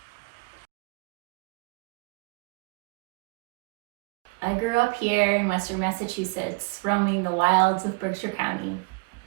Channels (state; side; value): quieter; left; 29.3 dB